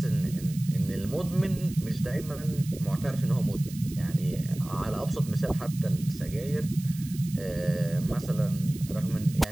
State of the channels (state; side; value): noise; right; hiss, 17 dB below the sound